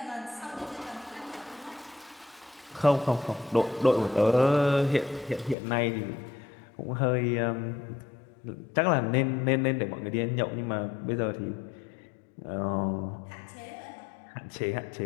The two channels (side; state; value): right; drops out; at 5.6 s